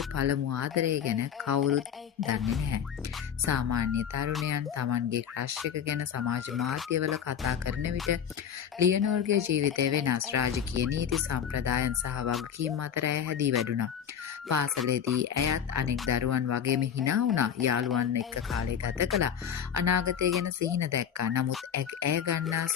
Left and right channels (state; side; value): quieter; right; 8.4 dB